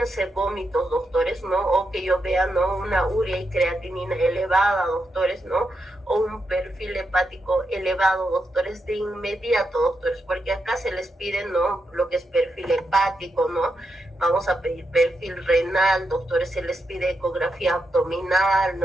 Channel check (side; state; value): both; normal; correlation 0.84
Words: vómitos, doctores, ¿no? O que yo vea, ¿no? Una urea y creatinina elevada, doctores, ¿no? O un perfil hepático elevado, doctores, de inmediato, doctores, porque acá se les pide, ¿no? Lo que es perfil hepático, ¿no? Vamos a pedir perfil renal, doctores, se les pide ecografía abdominal,